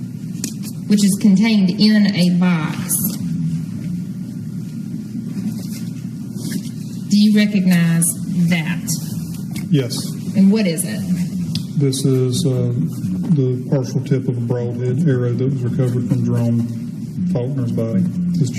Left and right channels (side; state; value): both; identical; correlation 1.00